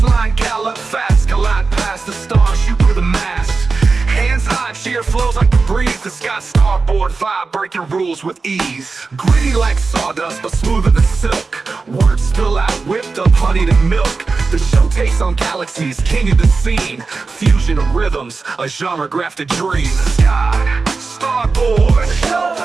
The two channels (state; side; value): quieter; left; 4.2 dB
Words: line, gallop fast, collide past the stars, shoot through the mass. Hands high, cheer flows like the breeze. The Scott Starboard vibe, breaking rules with ease. Gritty like sawdust, but smoother than silk. Words spill out, whipped up, honeyed and milk. The show takes on galaxies, king of the scene. Fusion of rhythms, a genre grafted dream. Scott Starboard.